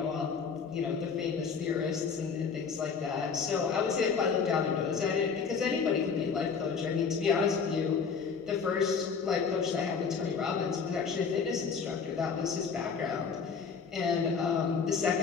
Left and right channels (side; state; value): right; quieter; 5.8 dB